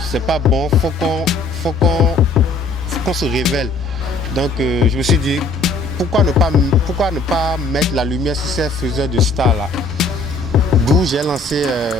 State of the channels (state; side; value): quieter; right; 3.2 dB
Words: c'est pas bon, faut qu'on se révèle. Donc je me suis dit pourquoi ne pas mettre la lumière sur ces faiseurs de stars là. D'où j'ai lancé